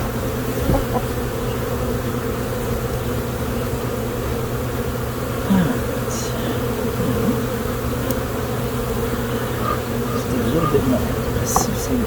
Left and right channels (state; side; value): identical; both; correlation 1.00